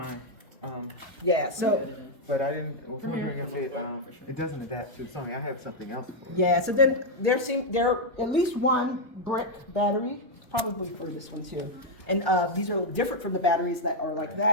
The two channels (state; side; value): normal; both; correlation -0.01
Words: Yeah. So. But I didn't. I was wondering if it doesn't adapt to Sony. I have something else for it. Yeah, so then there are at least one brick battery, probably for this one too. And these are different from the batteries that are like